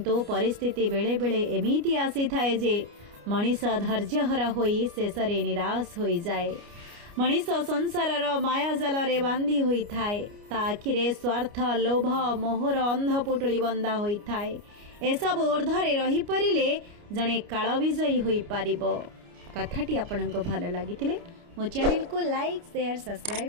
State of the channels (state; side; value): late; left; 29 ms